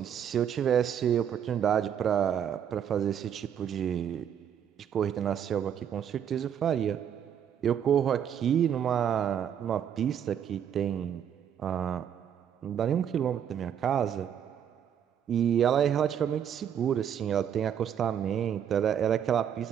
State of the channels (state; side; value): quieter; left; 9.0 dB